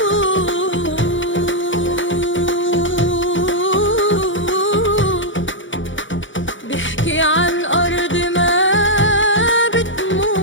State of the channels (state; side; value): late; right; 0.56 ms